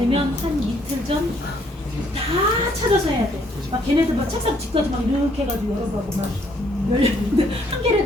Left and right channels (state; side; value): normal; both; correlation 0.66